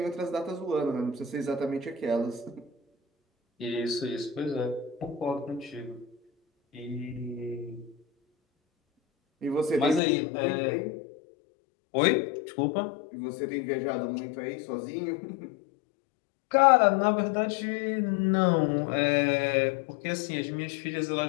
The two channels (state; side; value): drops out; right; at 10.0 s